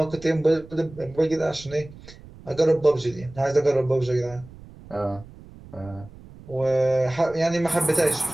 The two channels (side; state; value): right; noise; rumble, 19 dB below the sound